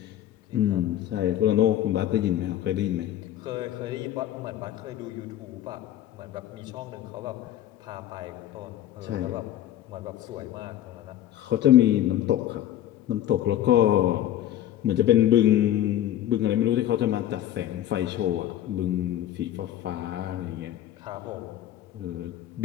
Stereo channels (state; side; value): quieter; right; 12.2 dB